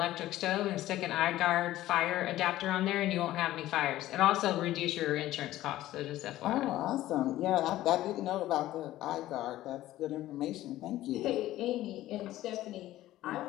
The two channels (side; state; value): right; quieter; 14.9 dB